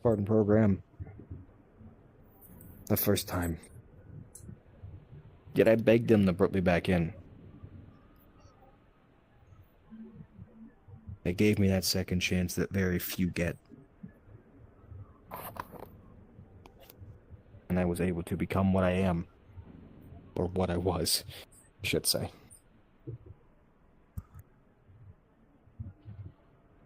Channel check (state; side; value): identical; both; correlation 1.00